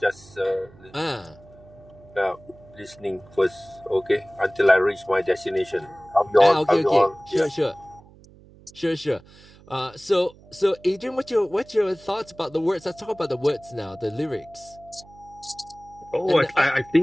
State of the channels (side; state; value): right; noise; hum, 24 dB below the sound